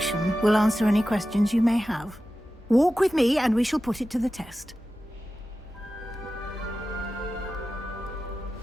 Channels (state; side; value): normal; both; correlation 0.94